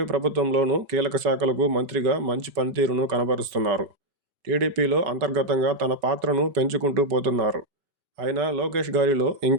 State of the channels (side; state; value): left; late; 4.8 ms